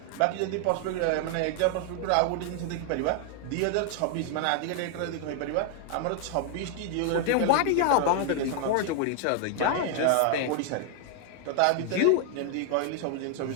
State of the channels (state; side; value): different; both; correlation 0.00